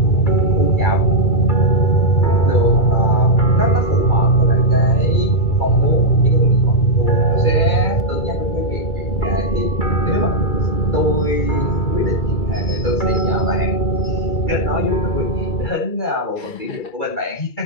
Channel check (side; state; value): right; late; 2.3 ms